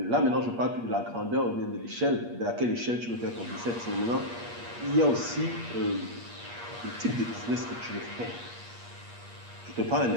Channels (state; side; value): late; left; 8.5 ms